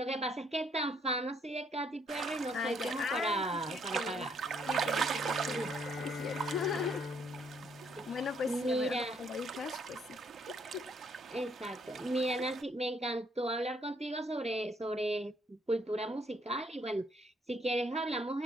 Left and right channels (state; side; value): normal; both; correlation 0.68